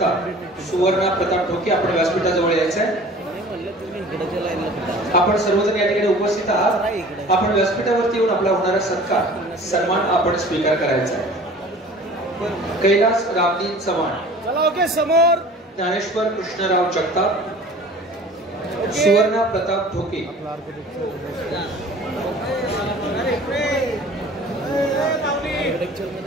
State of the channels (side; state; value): both; normal; correlation 0.45